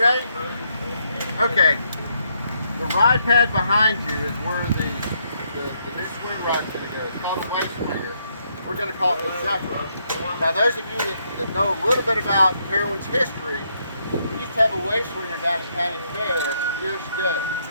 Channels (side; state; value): both; inverted; correlation -0.75